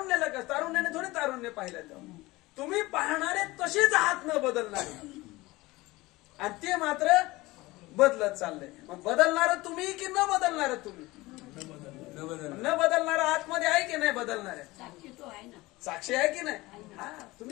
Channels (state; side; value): quieter; right; 20.5 dB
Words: का? तारुण्याने थोडे तारुण्य पाहिलं. तुम्ही पाहणारे तसेच आहात न बदलणारे आणि ते मात्र बदलत चाललंय. मग बदलणार तुम्ही की न बदलणार तुम्ही? न बदलणार आतमध्ये आहे की नाही? बदलणारे साक्षी आहे की नाही? हा,